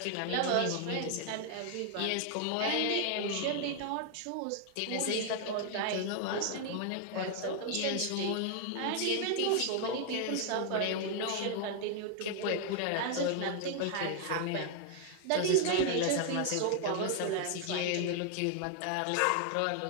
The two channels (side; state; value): both; different; correlation 0.00